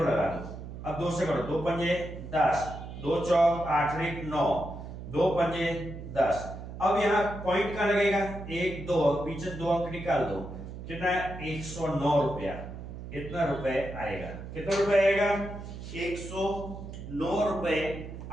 लगा दो, अब 2 से करो, 2 पंजे 10, 2 चौक 8 1 9, 2 पंजे 10। अब यहाँ पॉइंट का लगेगा 1 2, पीछे 2 अंक निकाल दो, कितना 109 रुपया, इतना रुपए आएगा। कितना रुपए आएगा, 109 रुपए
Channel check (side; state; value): right; noise; hum, 10 dB below the sound